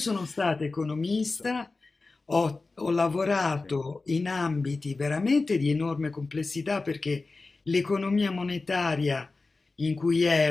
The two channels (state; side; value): quieter; right; 3.7 dB